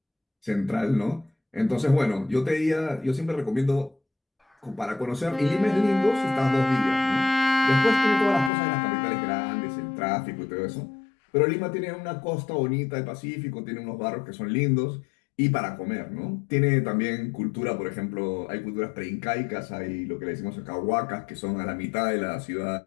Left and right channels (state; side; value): drops out; right; at 8.5 s